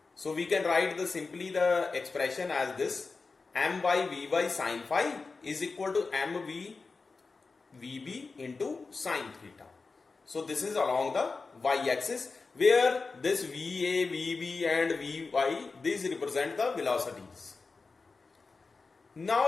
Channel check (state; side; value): quieter; right; 4.2 dB